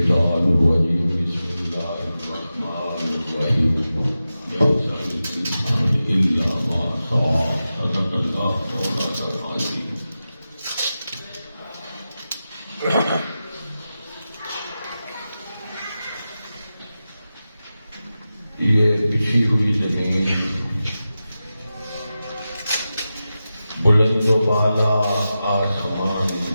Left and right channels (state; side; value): inverted; both; correlation -0.93